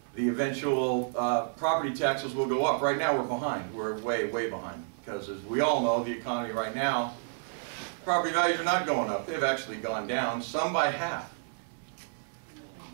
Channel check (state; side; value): silent; left; 58 dB below the other